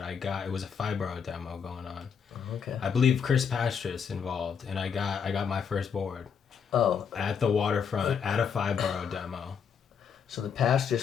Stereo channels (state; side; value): quieter; right; 6.9 dB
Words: it was a Fibro demo going on. Oh, okay. I believe Chris Pastris involved, and I got my first board. Oh. At the waterfront at a Fibro demo. So the